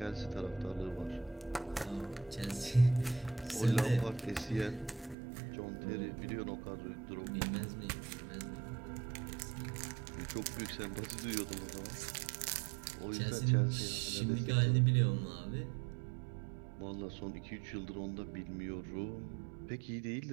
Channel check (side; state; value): left; drops out; at 5.2 s